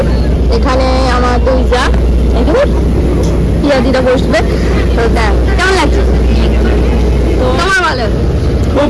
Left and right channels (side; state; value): both; identical; correlation 1.00